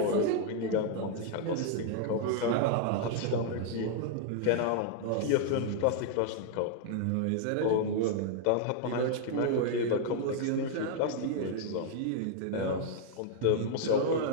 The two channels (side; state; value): both; different; correlation 0.00